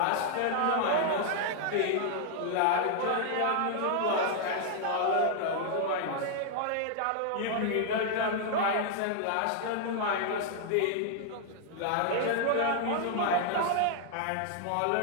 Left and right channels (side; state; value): both; different; correlation -0.01